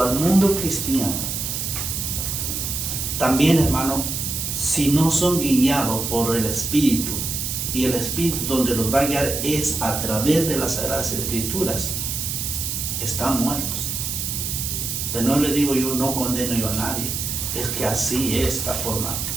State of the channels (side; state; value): right; noise; hiss, 3 dB below the sound